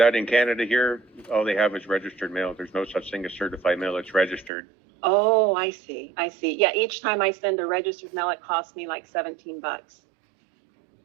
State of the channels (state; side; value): drops out; left; at 4.5 s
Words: In Canada here, all they have is registered mail. There's no such thing as certified mail. It's registered. Oh, I see. Yeah, each time I send a registered mail, it costs me like $17. Yeah,